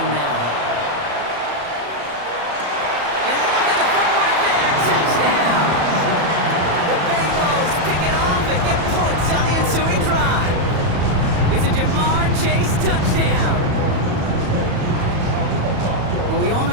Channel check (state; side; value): late; left; 34 ms